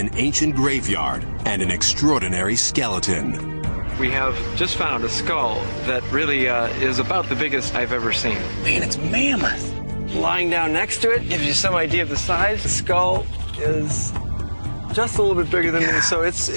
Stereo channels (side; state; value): both; inverted; correlation -1.00